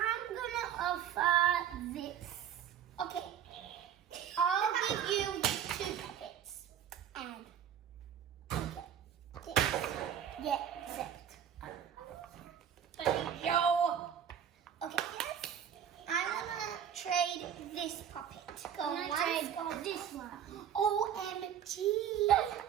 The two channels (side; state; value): left; quieter; 9.2 dB